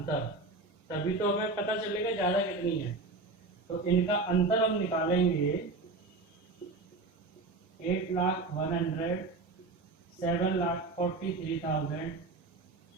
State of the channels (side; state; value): left; quieter; 3.5 dB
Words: तभी तो हमें पता चलेगा ज्यादा कितनी है। तो इनका अंतर हम निकालेंगे 8,01,000, 7,43,000,